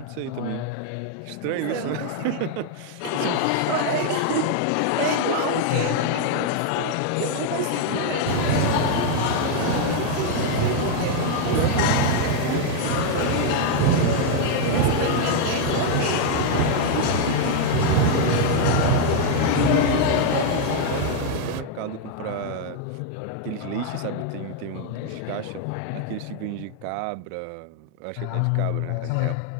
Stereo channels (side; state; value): both; different; correlation 0.00